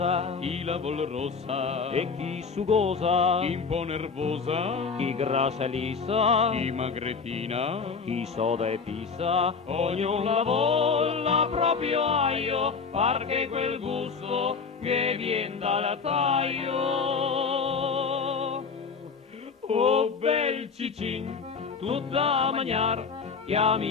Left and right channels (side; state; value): right; quieter; 5.3 dB